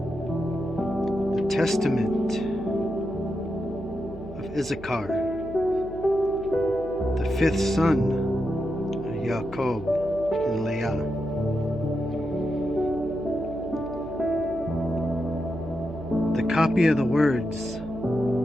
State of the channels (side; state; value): right; noise; hum, 15 dB below the sound